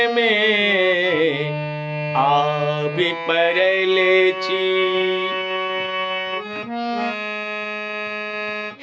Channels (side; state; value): both; identical; correlation 1.00